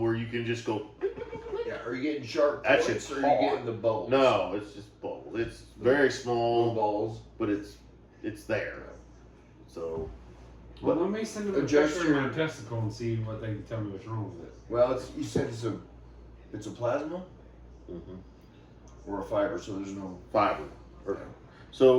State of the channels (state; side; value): identical; both; correlation 1.00